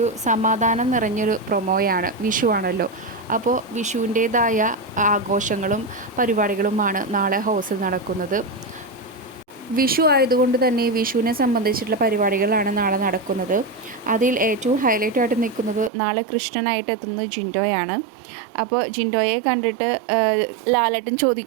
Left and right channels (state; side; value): drops out; left; at 15.9 s